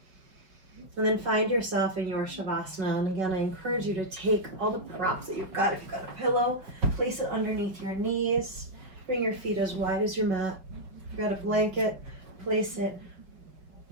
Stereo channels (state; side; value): late; left; 5.1 ms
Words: And then find yourself in your Shavasana. And again, I encourage you to take all the props that you've got. If you've got a pillow, place it underneath your knees. Bring your feet as wide as your mat. If you've got a blanket, place it